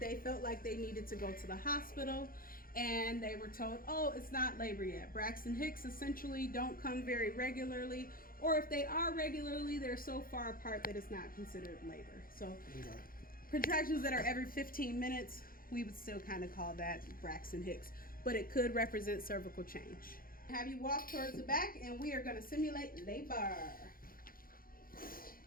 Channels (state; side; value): late; right; 0.42 ms